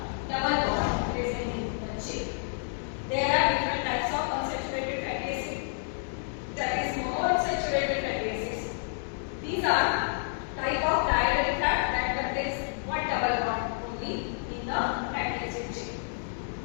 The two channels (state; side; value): silent; right; digital silence